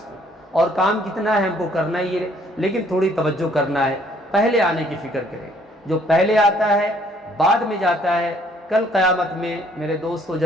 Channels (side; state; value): both; normal; correlation 0.63